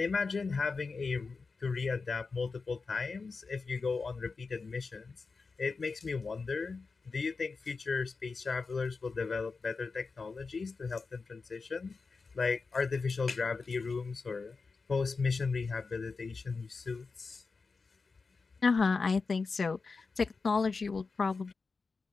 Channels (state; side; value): quieter; right; 4.4 dB